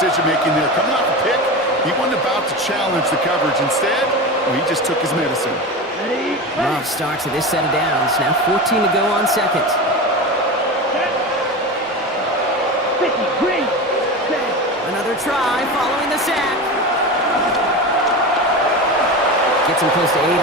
there. Coming off a pick, he wasn't about to challenge the coverage. Instead, he just took his medicine. Ready. Love starts with this set of downs. Now 14 to go on second. Set. 50 green. Set. Another try following the sack. Gets him close to 8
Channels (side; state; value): both; normal; correlation 0.25